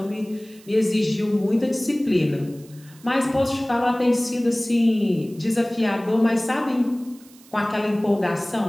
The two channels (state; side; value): noise; right; hiss, 25 dB below the sound